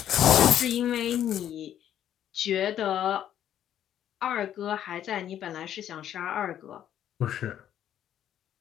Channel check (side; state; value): right; quieter; 10.7 dB